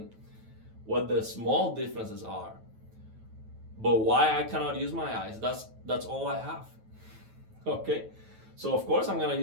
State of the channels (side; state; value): left; late; 9.2 ms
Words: what the small differences are. But why I cannot use my eyes? That's all I have. Okay? So of course I'm gonna